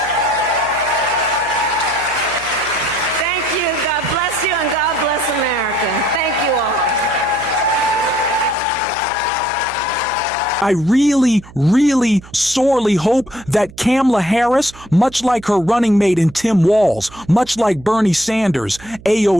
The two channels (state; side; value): noise; right; hum, 20 dB below the sound